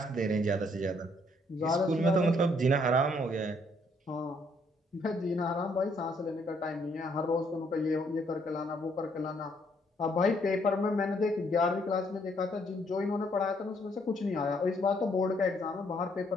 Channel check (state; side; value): normal; both; correlation 0.69